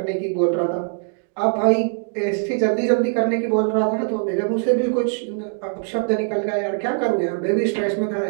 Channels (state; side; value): silent; left; 61 dB below the other